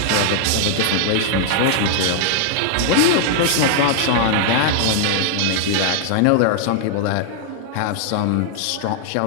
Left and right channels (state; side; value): different; both; correlation 0.00